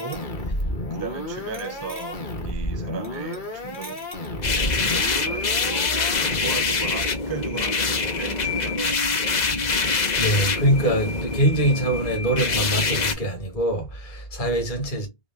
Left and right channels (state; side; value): late; right; 2.0 ms